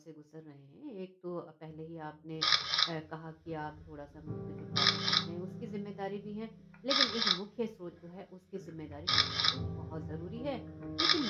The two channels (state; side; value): identical; both; correlation 1.00